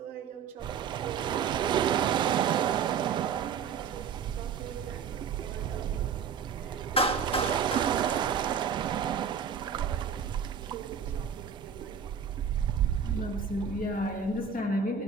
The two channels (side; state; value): left; quieter; 6.7 dB